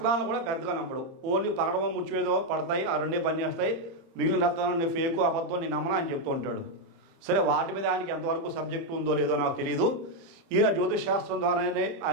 కూడా పెద్దగా నమ్మడు. ఓన్లీ పగడమో ముచ్చివేదో పడతాయి, ఆ రెండే పనిచేస్తాయి, మిగిలిన రత్నాలు ఫేకు అబద్ధం నేను నమ్మను అని చెప్తూ ఉంటాడు. సరే, వాటి మీద ఆయనకి ఎంతవరకు సబ్జెక్టు ఉందో లేదో నాకు తెలియదు. ఈయన జ్యోతిష్ శాస్త్రం ద్వారానే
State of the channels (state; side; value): late; left; 30 ms